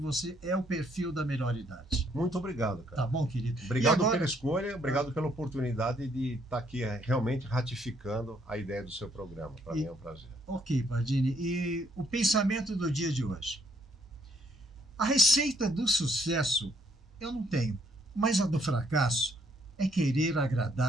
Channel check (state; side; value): normal; both; correlation 0.68